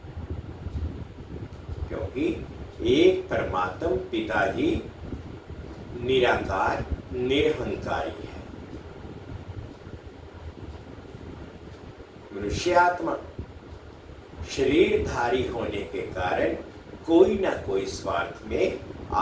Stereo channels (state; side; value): identical; both; correlation 1.00